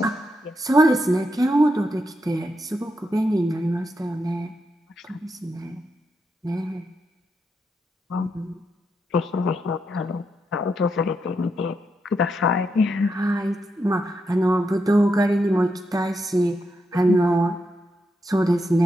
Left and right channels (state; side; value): normal; both; correlation 0.83